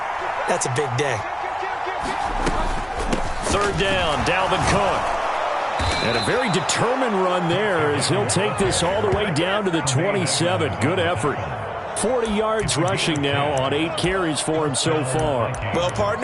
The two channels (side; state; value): both; identical; correlation 1.00